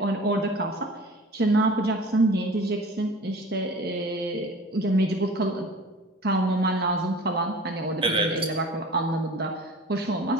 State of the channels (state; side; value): normal; both; correlation 0.41